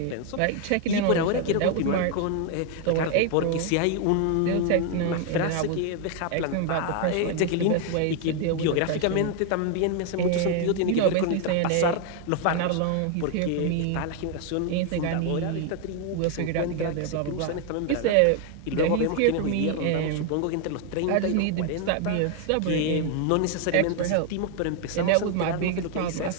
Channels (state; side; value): different; both; correlation 0.01